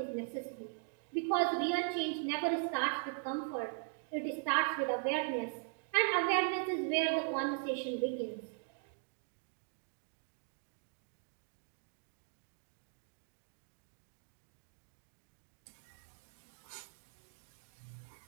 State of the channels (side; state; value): left; silent; 51 dB below the other